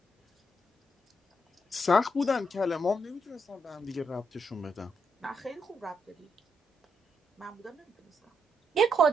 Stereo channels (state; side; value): normal; both; correlation 0.78